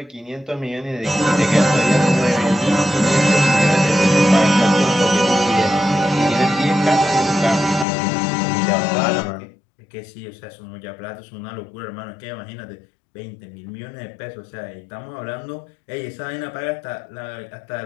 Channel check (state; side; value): drops out; right; at 7.9 s